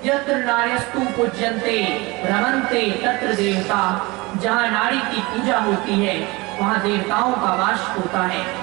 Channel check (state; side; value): quieter; left; 23.7 dB